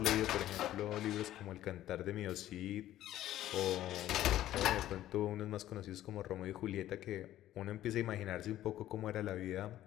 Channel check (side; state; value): right; quieter; 13.4 dB